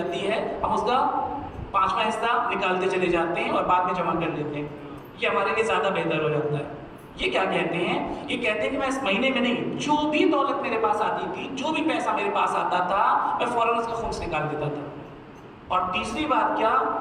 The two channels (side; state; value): both; identical; correlation 1.00